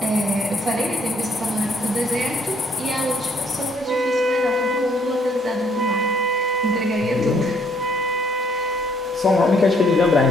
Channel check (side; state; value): both; normal; correlation 0.66